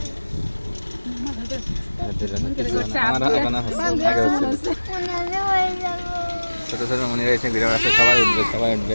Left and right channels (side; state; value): both; inverted; correlation -1.00